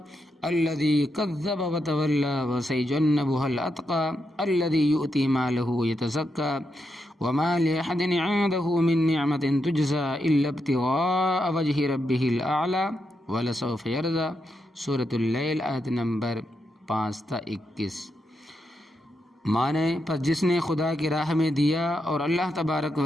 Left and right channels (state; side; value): normal; both; correlation 0.83